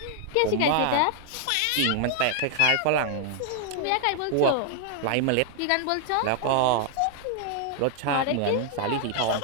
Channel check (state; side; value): different; both; correlation 0.00